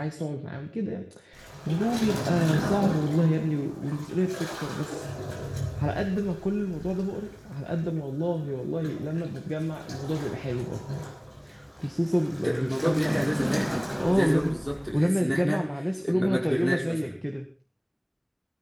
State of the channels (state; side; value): identical; both; correlation 1.00